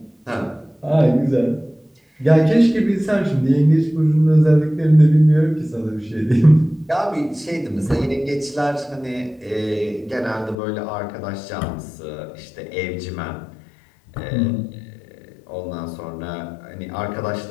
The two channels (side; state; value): right; drops out; at 10.6 s